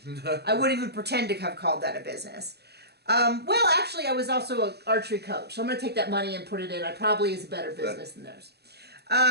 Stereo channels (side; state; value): left; late; 0.48 ms